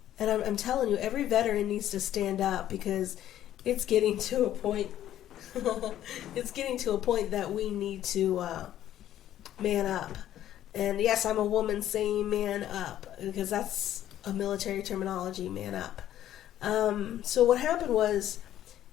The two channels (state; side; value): quieter; right; 12.1 dB